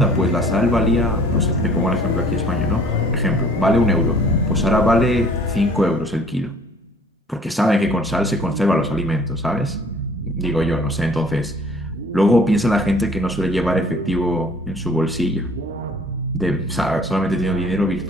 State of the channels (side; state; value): both; normal; correlation 0.53